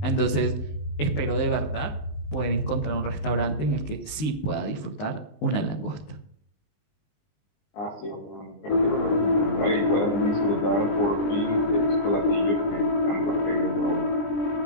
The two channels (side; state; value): right; late; 19 ms